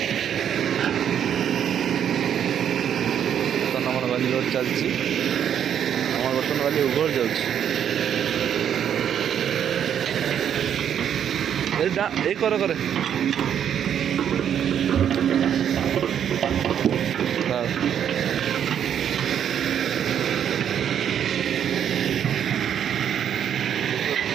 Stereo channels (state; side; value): quieter; left; 9.1 dB